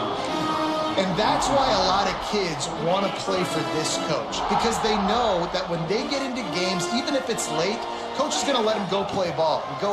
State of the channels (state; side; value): identical; both; correlation 1.00